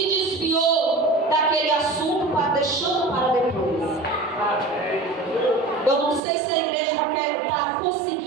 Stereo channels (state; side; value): drops out; left; at 6.2 s